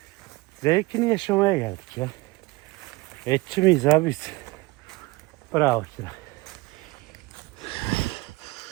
zevkini yaşamaya geldik ya. Etçi miyiz abi biz? Bravo Kira.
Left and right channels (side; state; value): left; quieter; 22.3 dB